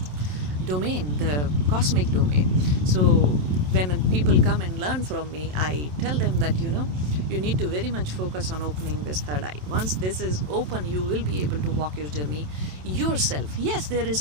domain, the cosmic domain. So when people come and learn from me, I tell them that you need to very much focus on opening this third eye. Once this is open, you will be able to walk your journey yourself. Yes, there is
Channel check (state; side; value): late; left; 27 ms